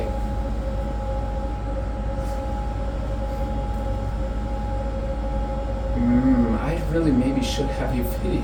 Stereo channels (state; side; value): identical; both; correlation 1.00